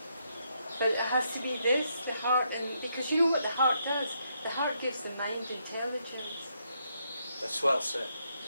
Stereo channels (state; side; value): inverted; both; correlation -0.77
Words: But it has to be this, the heart, and because you know what the heart does? The heart gives the mind intelligence. That's well said.